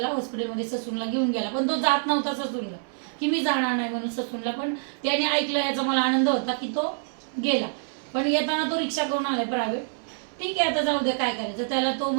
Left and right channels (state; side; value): silent; left; 61 dB below the other